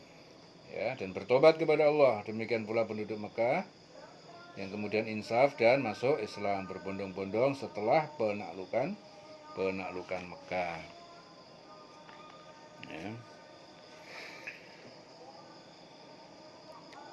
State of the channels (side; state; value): both; identical; correlation 1.00